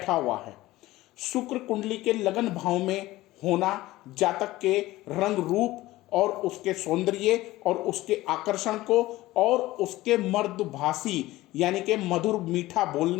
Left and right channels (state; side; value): quieter; right; 17.5 dB